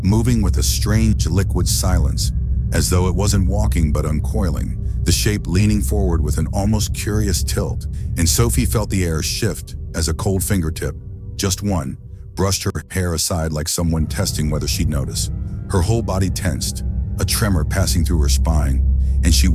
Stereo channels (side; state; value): both; identical; correlation 1.00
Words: moving with a strange liquid silence, as though it wasn't walking but uncoiling, the shape leaning forward with an almost curious tilt. And Sophie felt the air shift as a cold fingertip, just one, brushed her hair aside like someone testing whether she'd notice. Her whole body tensed, a tremor passing through her spine, and she